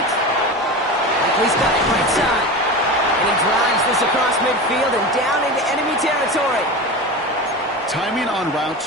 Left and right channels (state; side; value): normal; both; correlation 0.27